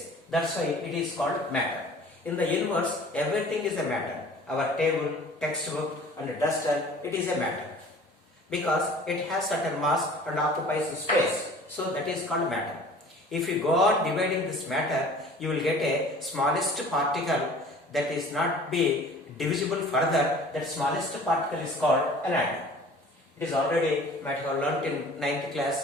That's why it is called matter. In the universe, everything is a matter. Our table, textbook and duster, it is a matter. Because it has certain mass and occupies space. So that is called matter. If you go on dividing this matter, you will get a smallest particle that is not be divisible further. That smallest particle is called an atom. It is already might have learnt in 9th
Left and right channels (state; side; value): normal; both; correlation 0.47